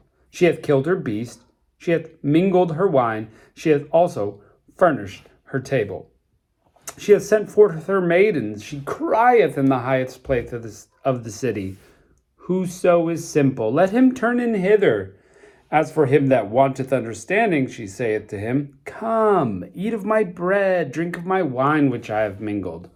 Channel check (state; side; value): identical; both; correlation 1.00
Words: She hath killed her beast, she hath mingled her wine, she hath also furnished her table. She hath sent forth her maidens, she crieth in the highest place of the city. Whoso is simple, let him turn in hither. As for him that wanteth understanding, she saith to him, Come, eat of my bread, drink of my wine which I have mingled.